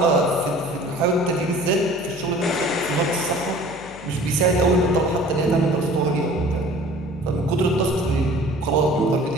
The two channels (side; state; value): left; noise; hum, 20 dB below the sound